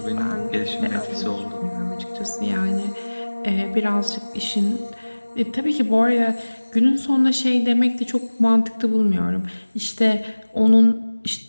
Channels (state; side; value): inverted; both; correlation -1.00